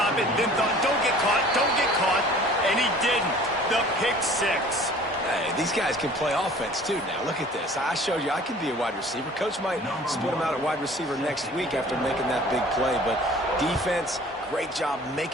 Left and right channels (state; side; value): normal; both; correlation 0.48